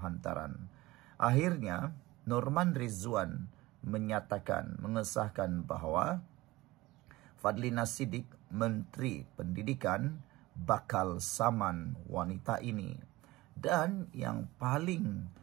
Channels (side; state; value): left; quieter; 19.2 dB